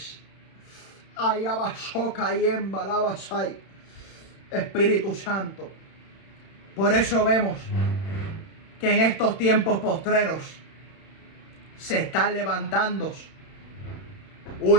Espíritu Santo. Por eso vemos que en estos tiempos postreros se están levantando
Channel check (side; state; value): right; late; 31 ms